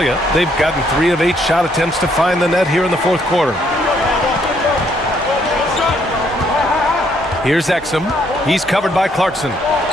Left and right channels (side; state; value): both; normal; correlation 0.69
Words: they've gotten 3 of 8 shot attempts to find the net here in the fourth quarter. Here's Exum. He's covered by Clarkson.